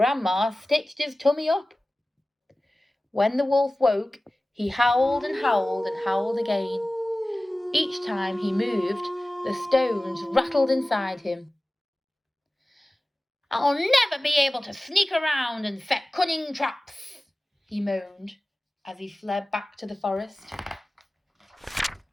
stitched his tummy up. When the wolf woke, he howled and howled and howled again. Each time he moved, the stones rattled inside him. "I'll never be able to sneak around and set cunning traps," he moaned as he fled back to the forest.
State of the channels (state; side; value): normal; both; correlation 0.97